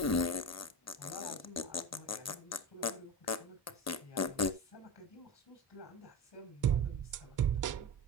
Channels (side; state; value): both; normal; correlation 0.22